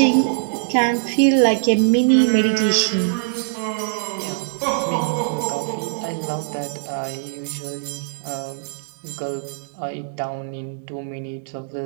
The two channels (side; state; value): left; silent; digital silence